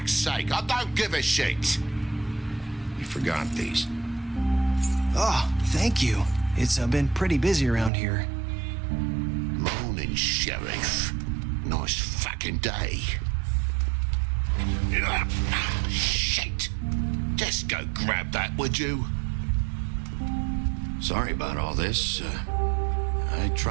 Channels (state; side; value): drops out; left; at 7.9 s